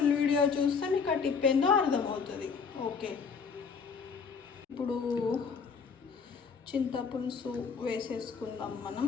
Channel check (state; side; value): quieter; right; 5.6 dB